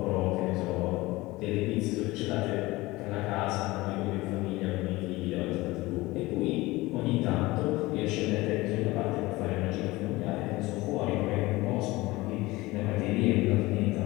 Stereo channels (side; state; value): right; quieter; 20.3 dB